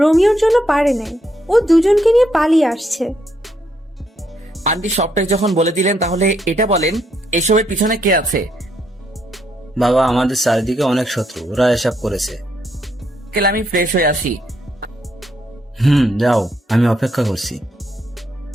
জন্য পারে নাই। ও দুজনকে নিয়ে পালিয়ে আসছে। আন্টি সবটাই যখন বলে দিলেন তাহলে এটা বলেন এসবের পিছনে কে আছে? বাবা, আমাদের চারিদিকে অনেক শত্রু, ওরা এসব করেছে। আঙ্কেল আমি ফ্রেশ হয়ে আসি। যাও, আমি অপেক্ষা করছি।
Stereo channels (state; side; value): normal; both; correlation 0.75